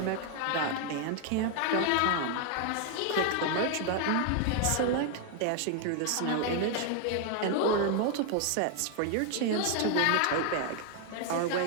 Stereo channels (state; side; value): different; both; correlation 0.00